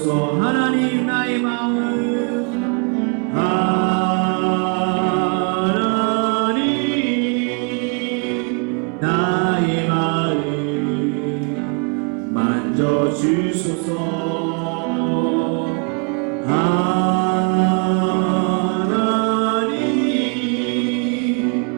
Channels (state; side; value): quieter; left; 37.8 dB